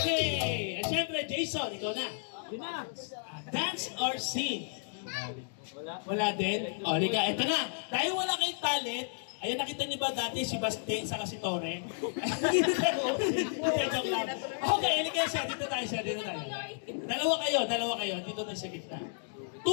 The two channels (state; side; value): silent; right; digital silence